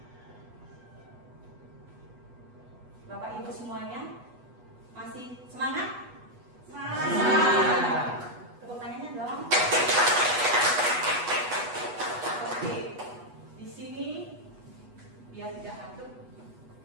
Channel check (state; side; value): late; left; 8.2 ms